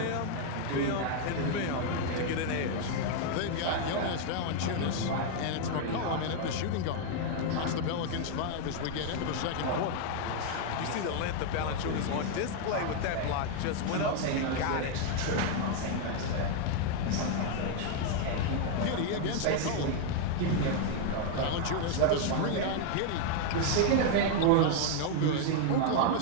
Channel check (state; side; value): different; both; correlation 0.00